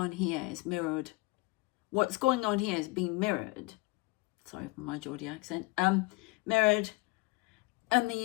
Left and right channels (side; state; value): right; quieter; 23.7 dB